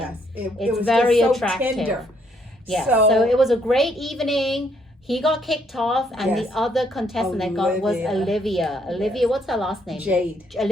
It It's was very just so attractive. tender. Yeah. So it was a great evening. He got kicked off, and Yes. the other contestant that got was Olivia. Olivia, Yes. what's her last name? Jade.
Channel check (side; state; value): both; normal; correlation 0.70